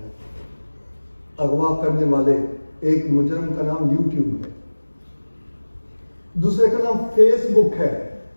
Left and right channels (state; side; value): inverted; both; correlation -1.00